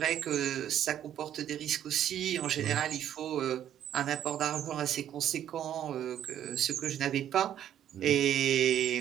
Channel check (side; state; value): left; quieter; 10.6 dB